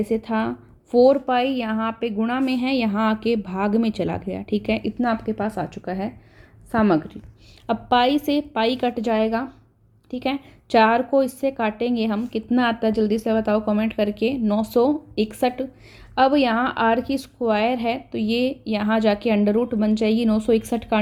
से था, 4 पाई यहाँ पे गुणा में है, यहाँ आके भाग में चला गया, ठीक है। इतना आपके पास आ चुका है सामग्री। अब पाई से पाई कट जाएगा, ठीक है। 4 को इससे काटेंगे हम, कितना आता है जल्दी से बताओ कमेंट करके, 961। अब यहाँ आर की स्क्वायर है तो ये यहाँ जाके अंडर रूट बन जाएगी, 961 का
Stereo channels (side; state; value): both; identical; correlation 1.00